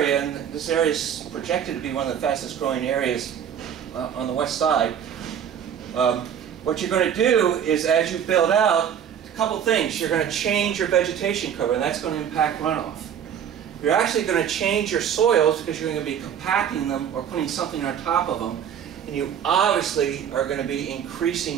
and this area is projected to be one of the fastest growing areas on the west side, what you're going to do is as you build out, a couple things. You're going to change your vegetation cover, and that's going to impact runoff. You're actually going to change your soils because you're going to be compacting them or putting something on top of them, and you obviously are going to be increasing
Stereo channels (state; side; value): quieter; left; 8.7 dB